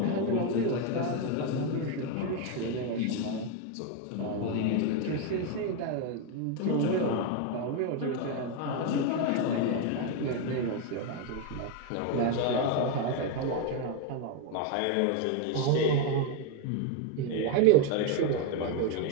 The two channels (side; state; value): both; different; correlation 0.01